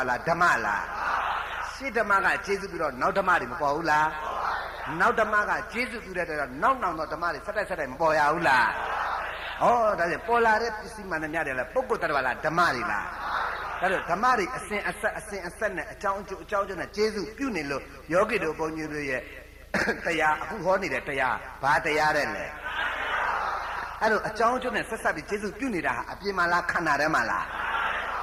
လားဓမ္မလားရှင်းဓမ္မကကျေစုပြီးတော့နောက်ဓမ္မတွေမပေါ်ဘူးလားနောက်ဓမ္မကကျေစုပြုတဲ့တော့နောက်တော့ဓမ္မတွေဆက်တိုက်မပေါ်ရဘူးလားဩဒါဖြင့်ပေါ်လာတဲ့ပစ္စည်းမှန်တဲ့များတယ်လားပုဂ္ဂိုလ်တ attva လားဓမ္မတွေလားဒါတော့ဓမ္မတွေအစဉ်အဆက်နဲ့အကြောင်းအကျိုးနဲ့ကျေစုပြုနေလို့ယောဂီတို့ဘုန်းကြီးတို့ရဲ့တရားအခုဟောနေတဲ့တရားဘာတရားတဲ့လဲအဲ့တော့အကြောင်းအကျိုးနဲ့ဆက်ပြီးကျေစုပြုနေတာဟာအပြင်မှာလားခန္ဓာထဲမှာလား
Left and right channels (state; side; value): identical; both; correlation 1.00